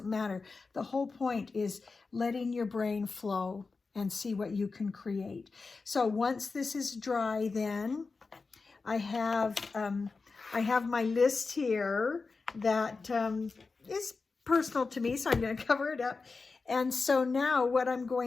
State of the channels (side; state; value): right; quieter; 4.2 dB